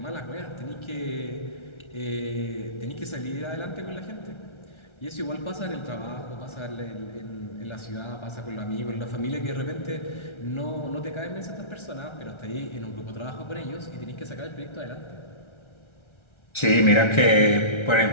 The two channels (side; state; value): right; late; 1.3 ms